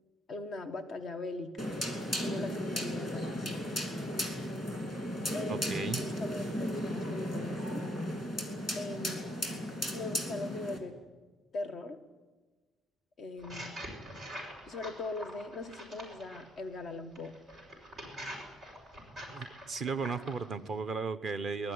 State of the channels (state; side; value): normal; both; correlation 0.70